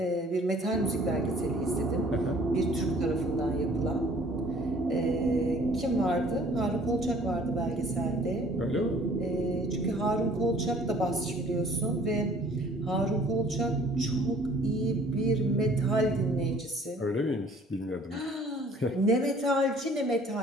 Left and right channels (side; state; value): both; normal; correlation 0.54